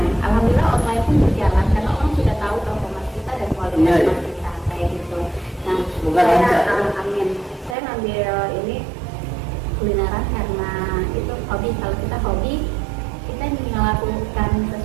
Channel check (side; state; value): left; drops out; at 7.8 s